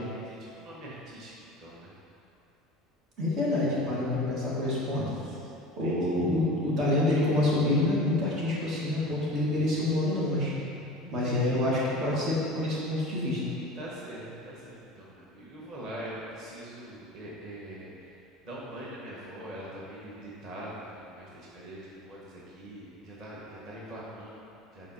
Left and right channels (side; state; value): both; normal; correlation 0.37